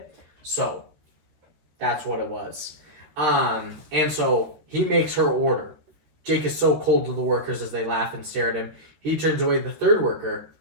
So, that's what it was. And so, he makes her order. Jake is so cold to the workers as they laugh and stare at him. He turns away the 3rd worker.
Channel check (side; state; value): left; late; 13 ms